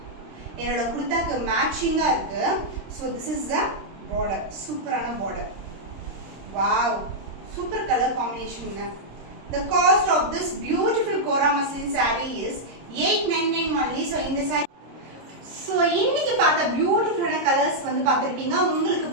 குர்தாக்கு மேட்சிங்கா இருக்கு. So this is the border, சூப்பரான border. Wow, super colour combination. The cost of this beautiful Kora muslin saree is 899 only. So இந்த saree, so இன்னைக்கு பார்த்த பியூட்டிஃபுல்லான கலர்ஸ் வந்து பார்த்துருப்பீங்க. உங்களுக்கு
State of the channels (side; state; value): left; late; 26 ms